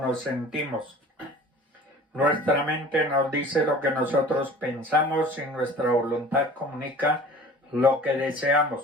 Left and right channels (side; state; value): both; normal; correlation 0.44